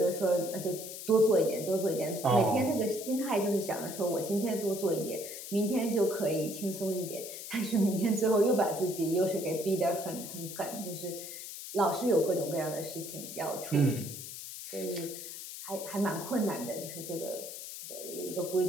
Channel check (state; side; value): noise; left; hiss, 10 dB below the sound